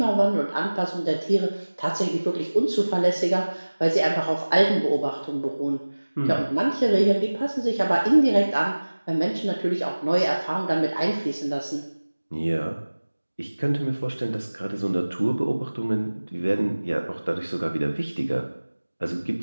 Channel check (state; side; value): inverted; both; correlation -1.00